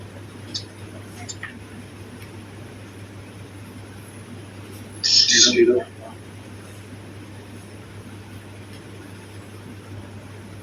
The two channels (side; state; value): both; identical; correlation 1.00